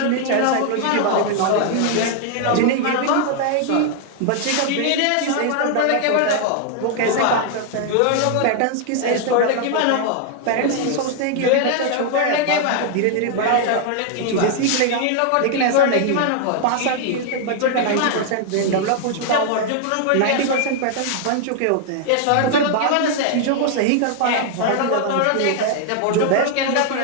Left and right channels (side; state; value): both; different; correlation 0.00